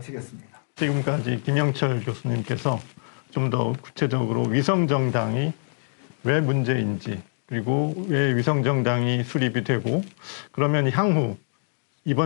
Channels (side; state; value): right; silent; digital silence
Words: 지금까지 김영철 교수님께서 좀 더 구체적으로 위성정당이 왜 문제인지, 그리고 왜 위성정당이 수립이 되고, 그러면 향후